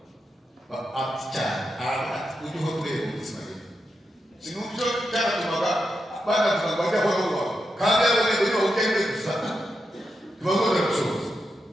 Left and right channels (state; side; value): normal; both; correlation 0.86